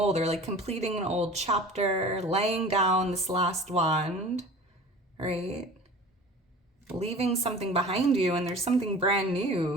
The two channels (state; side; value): normal; both; correlation 0.41